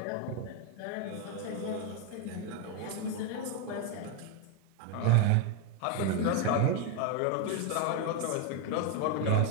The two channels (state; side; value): different; both; correlation 0.02